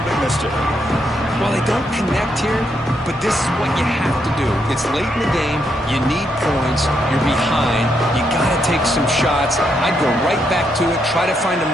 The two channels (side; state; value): both; normal; correlation 0.78